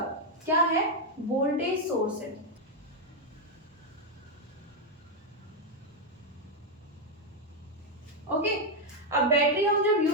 क्या है, वोल्टेज सोर्स है। ओके, अब बैटरी हम जब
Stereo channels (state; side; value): normal; both; correlation 0.02